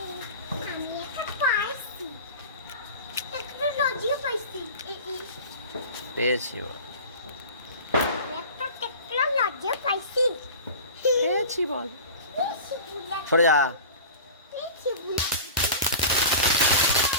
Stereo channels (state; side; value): inverted; both; correlation -0.36